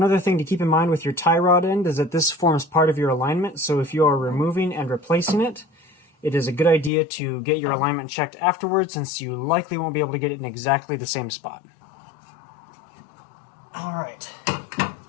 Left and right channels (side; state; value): right; drops out; at 6.9 s